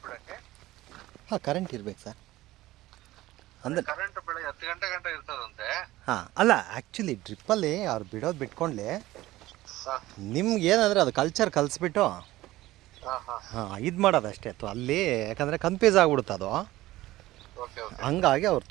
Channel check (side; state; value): left; quieter; 16.9 dB